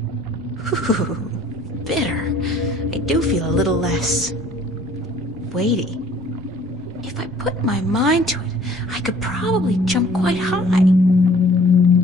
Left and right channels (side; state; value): both; normal; correlation 0.54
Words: Ooh, bitter. I do feel a little less weighty. If I put my mind to it, I could probably jump quite high.